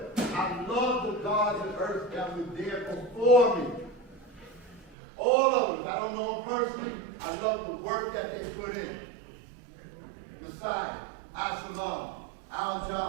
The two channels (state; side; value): drops out; left; at 5.0 s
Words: I love the gods of earth that were there before me. All of them. I don't know them personally. I love the work that they put in. Messiah, Absalom,